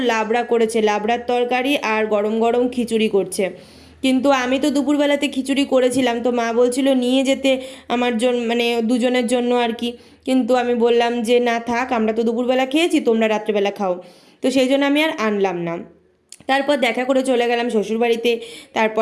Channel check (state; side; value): identical; both; correlation 1.00